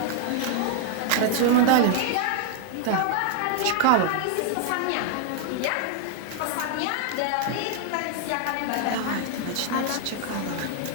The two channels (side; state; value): both; different; correlation 0.00